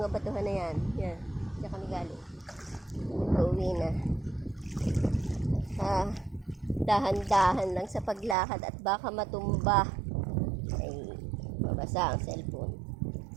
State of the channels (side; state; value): left; drops out; at 8.3 s